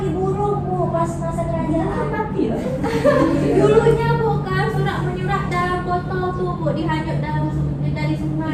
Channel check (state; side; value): identical; both; correlation 1.00